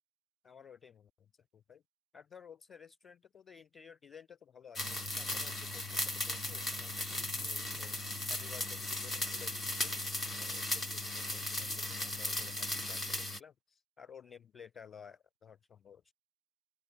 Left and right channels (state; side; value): normal; both; correlation 0.73